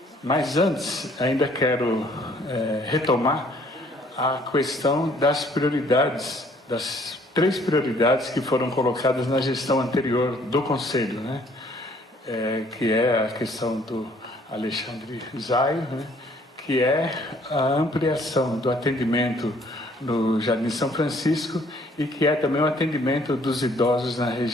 Mas antes, ainda quero retomar a questão das prioridades, das 3 prioridades que foram colocadas na gestão anterior do Conselho, né? Que é a questão do Alexandre Zaio, né? Que é a ampliação do atendimento no Jardim São Francisco e que é também o atendimento dos idosos na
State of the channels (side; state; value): both; normal; correlation 0.61